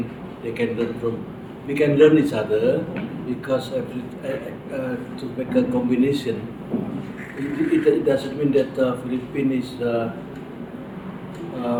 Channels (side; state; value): both; identical; correlation 1.00